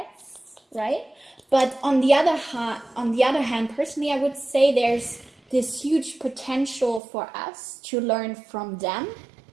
right? But on the other hand, personally, I would say there's this huge potential for us to learn from them.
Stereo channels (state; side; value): drops out; left; at 7.0 s